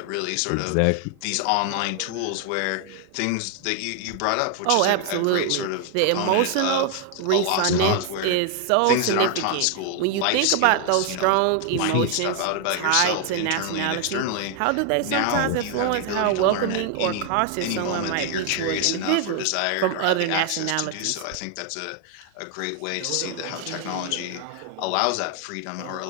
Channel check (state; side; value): different; both; correlation 0.00